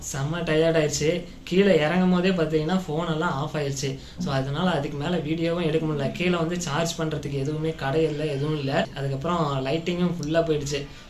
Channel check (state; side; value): identical; both; correlation 1.00